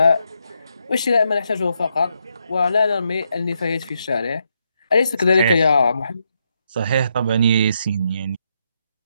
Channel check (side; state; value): both; inverted; correlation -0.80